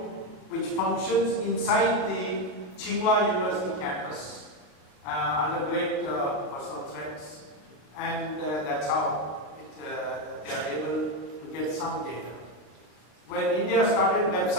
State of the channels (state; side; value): late; right; 32 ms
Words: which functions inside the Tsinghua University campus under great personal threats, and that's how they are able to get some data. When India started